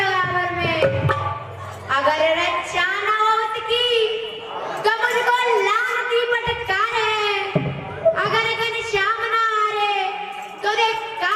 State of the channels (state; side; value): identical; both; correlation 1.00